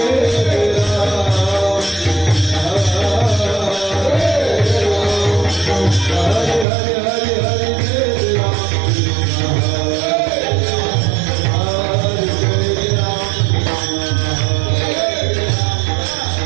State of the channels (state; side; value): drops out; left; at 6.7 s